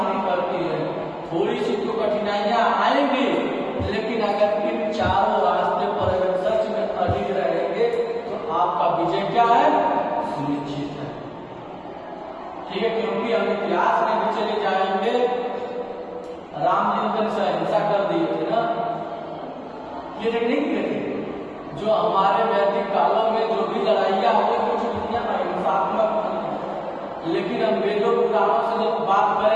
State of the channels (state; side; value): identical; both; correlation 1.00